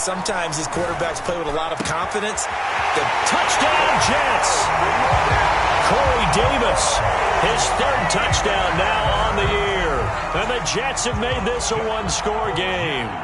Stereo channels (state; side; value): identical; both; correlation 1.00